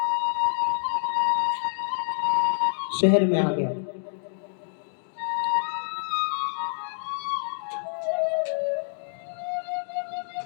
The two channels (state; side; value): silent; right; digital silence